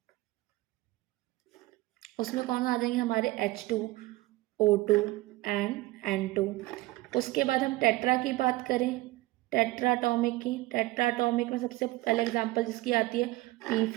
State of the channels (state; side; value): quieter; left; 19.3 dB